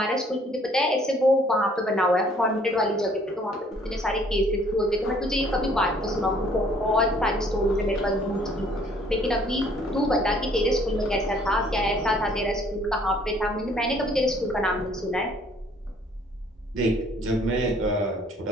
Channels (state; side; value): normal; both; correlation 0.60